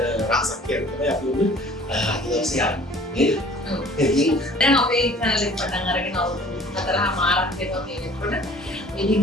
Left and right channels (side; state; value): both; normal; correlation 0.50